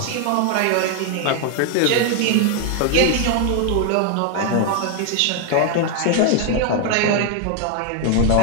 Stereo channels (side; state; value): both; different; correlation 0.00